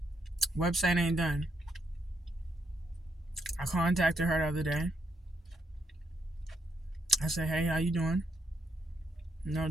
Website ain't done. I contacted her the other day. I said, hey, how you doing?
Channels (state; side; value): normal; both; correlation 0.77